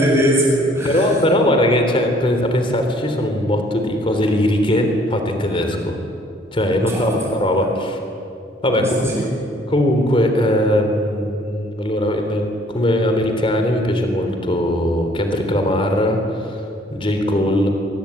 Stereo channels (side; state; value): both; normal; correlation 0.59